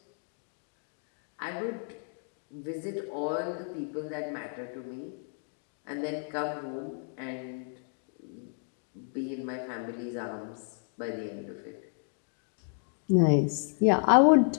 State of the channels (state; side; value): silent; right; 56 dB below the other